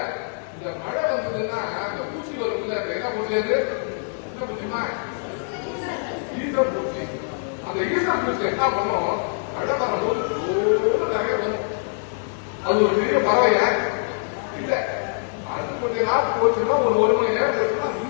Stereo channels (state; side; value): silent; right; digital silence